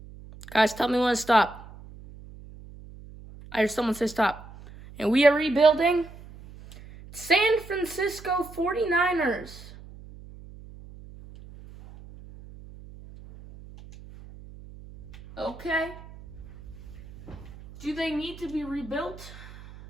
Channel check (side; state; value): right; noise; hum, 18 dB below the sound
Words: Guys, tell me when to stop. I heard someone say stop. And we are rebuilding San Francisco 49ers. Okay. Do they need to be rebuilt?